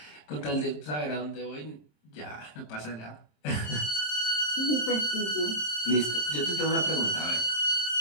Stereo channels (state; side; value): late; right; 27 ms